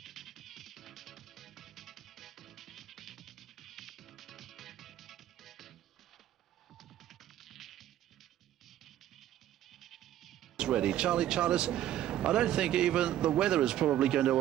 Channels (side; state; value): left; quieter; 12.4 dB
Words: Ready. Charlie Charters, I don't think even the weather is probably going to